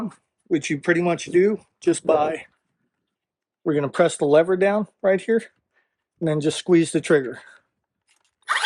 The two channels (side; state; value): both; identical; correlation 1.00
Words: which you pretty much do just by, we're going to press the lever down right here and then just squeeze the trigger.